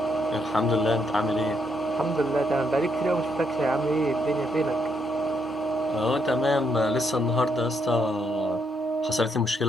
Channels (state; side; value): normal; both; correlation 0.76